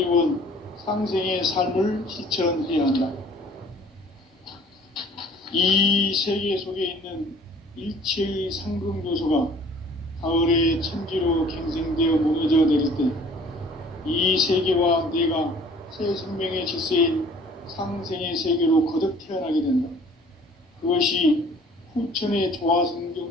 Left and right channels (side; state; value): both; normal; correlation 0.53